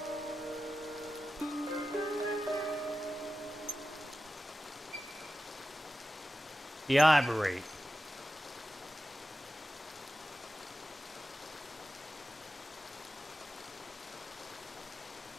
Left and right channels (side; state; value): both; normal; correlation 0.93